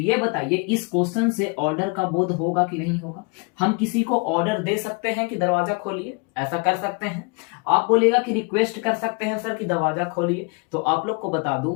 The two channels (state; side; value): quieter; right; 31.7 dB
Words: बताइए इस क्वेश्चन से ऑर्डर का बोध होगा कि नहीं होगा? हम किसी को ऑर्डर दे सकते हैं कि दरवाजा खोलिए, ऐसा कर सकते हैं। आप बोलेगा कि रिक्वेस्ट कर सकते हैं सर कि दरवाजा खोलिए। तो आप लोग को बता दूं